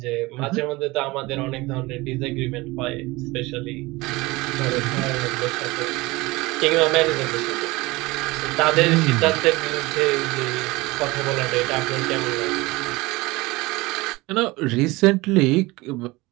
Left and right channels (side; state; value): left; quieter; 21.8 dB